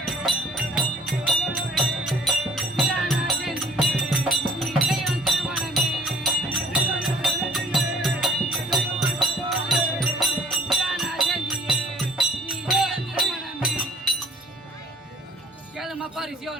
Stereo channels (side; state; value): both; normal; correlation 0.56